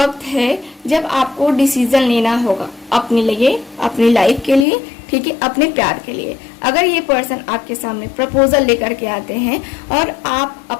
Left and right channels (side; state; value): right; drops out; at 4.7 s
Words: है जब आपको डिसीजन लेना होगा अपने लिए, अपनी लाइफ के लिए। ठीक है, अपने प्यार के लिए। अगर ये पर्सन आपके सामने प्रपोजल लेकर के आते हैं और आप